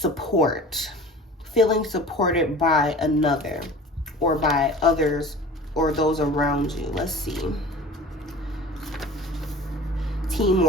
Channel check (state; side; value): normal; both; correlation 0.40